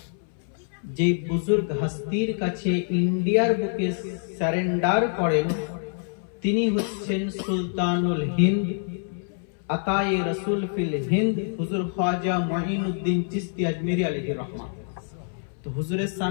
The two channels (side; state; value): right; silent; 61 dB below the other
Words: जे बुजुर्ग हस्तीर काछे इंडियार बुके सरेंडार करें तिनी हच्छेन सुल्तानुल हिंद अताए रसूल फिल हिंद हुजूर ख्वाजा मुइनुद्दीन चिश्ती अजमेरी अलैहि रहमा। तो हुजूरेर